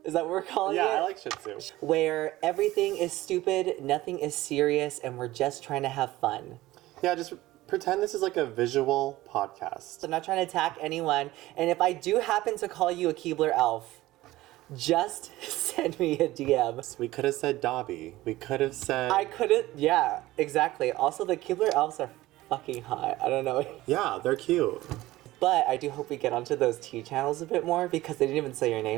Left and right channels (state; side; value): quieter; left; 17.3 dB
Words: Is that what we're calling it? Yeah, I like shit soup. Where everything is stupid, nothing is serious, and we're just trying to have fun. Yeah, just pretend this is like a visual podcast. I'm not trying to attack anyone, and if I do happen to call you a Keebler elf, just send me a DM. We could have said Dobby. We could have said... I couldn't, yeah, exactly. Also, the Keebler elves are fucking hot. I don't know. Yeah, they're cute. But I do hope we get onto those T channels a bit more because they didn't even say your